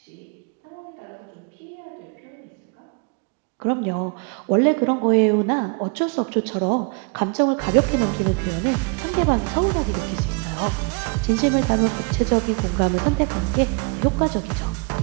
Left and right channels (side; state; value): left; quieter; 32.8 dB